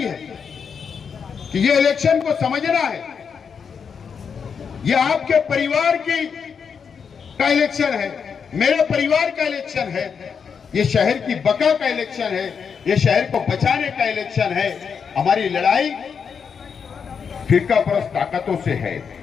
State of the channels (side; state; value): right; quieter; 6.5 dB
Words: है कि ये इलेक्शन को समझना है। ये आपके परिवार का इलेक्शन है, मेरे परिवार का इलेक्शन है, ये शहर की बका का इलेक्शन है, ये शहर को बचाने का इलेक्शन है। हमारी लड़ाई फिरका परस्त ताकतों से है,